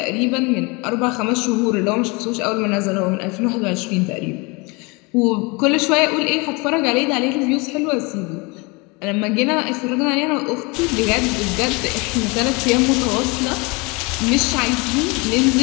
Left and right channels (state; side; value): quieter; right; 27.9 dB